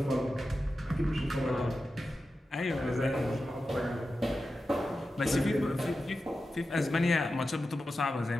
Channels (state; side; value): normal; both; correlation 0.92